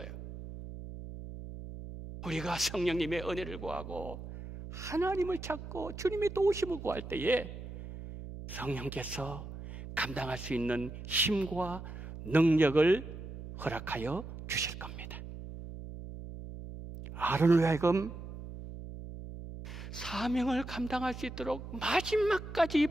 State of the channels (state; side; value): noise; right; hum, 11 dB below the sound